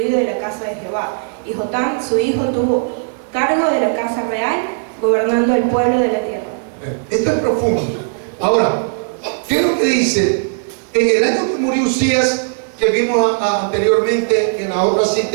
de la casa de Jehová. Y Jotam, su hijo, tuvo cargo de la casa real, gobernando el pueblo de la tierra. Esto es profundo. Ahora, ¿qué es lo que dice? En el año que murió Usías, que vimos anteriormente en la otra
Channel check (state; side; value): silent; left; digital silence